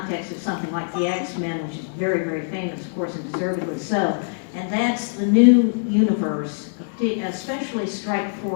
of something like the X-Men, which is very, very famous, of course, and deservedly so. And that's the new universe, especially Strike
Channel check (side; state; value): right; silent; digital silence